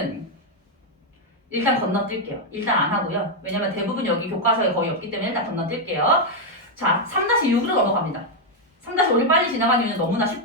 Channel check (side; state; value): both; normal; correlation 0.01